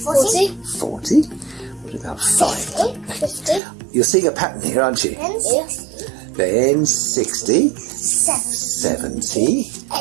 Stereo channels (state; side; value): drops out; left; at 3.6 s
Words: 40. 40. What about 5? 50. You're seeing a pattern here, aren't you? Then 60. Then 60. 70.